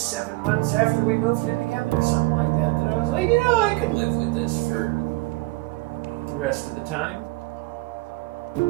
months after we moved in together, or something like that, that I was like, I could live with this for the rest of the time.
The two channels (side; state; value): left; quieter; 22.4 dB